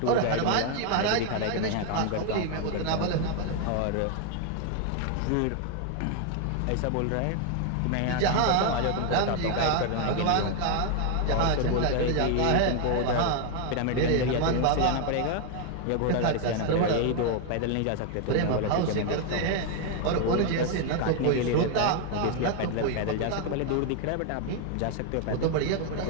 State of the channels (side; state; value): both; different; correlation 0.00